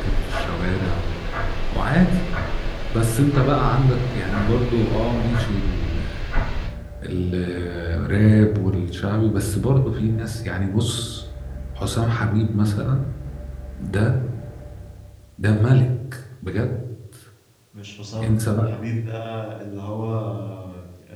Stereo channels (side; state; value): both; identical; correlation 1.00